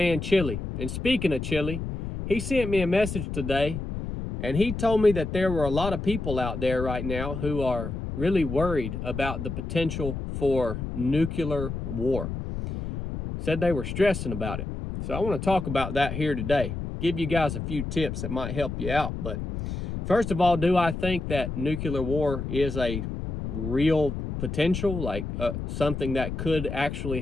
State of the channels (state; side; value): noise; left; rumble, 5 dB below the sound